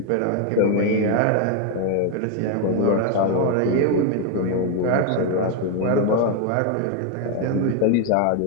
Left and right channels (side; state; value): both; different; correlation 0.01